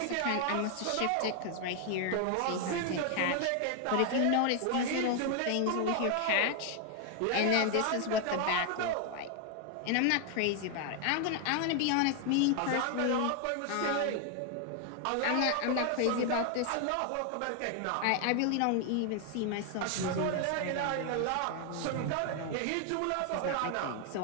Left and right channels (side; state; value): both; different; correlation 0.00